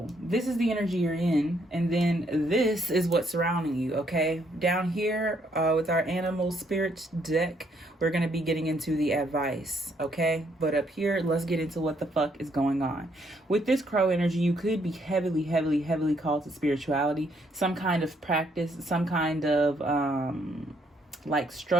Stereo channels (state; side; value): normal; both; correlation 0.71